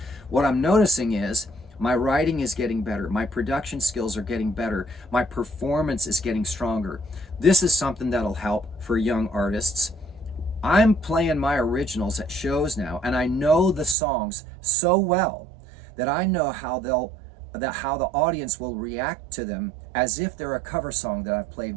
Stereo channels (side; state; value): left; drops out; at 14.0 s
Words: What I'm noticing is my writing is getting better. My production skills are getting better. My performance is getting stronger. This is something that'll help for young artists. I'm playing my originals at shows now, and I know the songs so well that I know how the audience will react to them as if they're a cover song that I've played